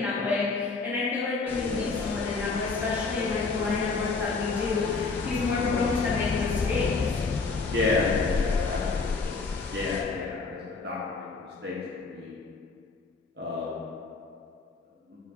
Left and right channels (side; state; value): right; quieter; 4.2 dB